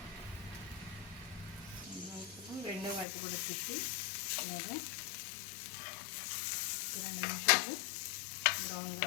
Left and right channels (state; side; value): drops out; right; at 3.1 s